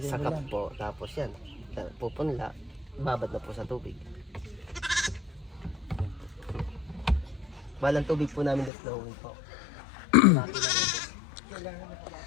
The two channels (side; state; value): right; drops out; at 8.7 s